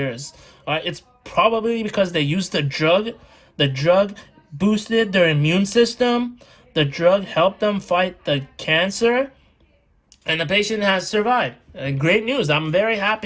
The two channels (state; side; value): identical; both; correlation 1.00